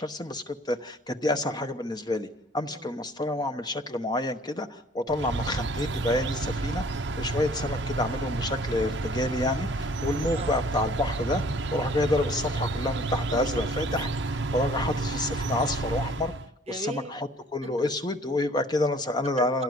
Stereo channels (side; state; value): both; normal; correlation 0.55